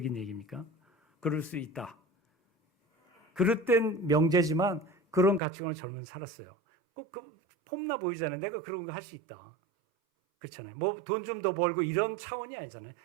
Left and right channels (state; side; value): drops out; left; at 5.4 s